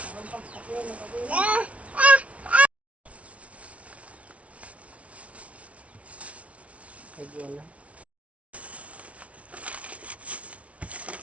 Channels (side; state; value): left; late; 0.064 ms